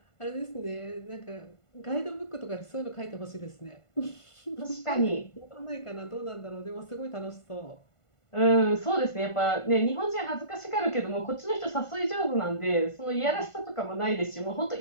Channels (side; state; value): right; late; 1.5 ms